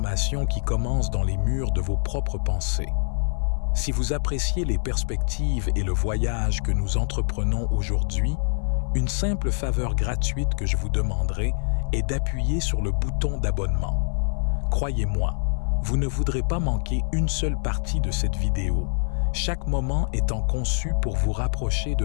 qui commence dans les murs de vos propres pensées. Si vous appréciez les perspectives et le voyage que nous entreprenons aujourd'hui, une simple faveur gratuite que je vous demanderai est d'appuyer sur le bouton d'abonnement. Croyez-moi, vous ne voudrez pas manquer une seule partie de cette vidéo, chaque moment étant conçu pour vous rapprocher de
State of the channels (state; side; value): silent; right; digital silence